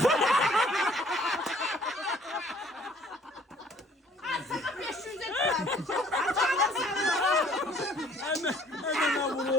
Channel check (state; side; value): normal; both; correlation 0.57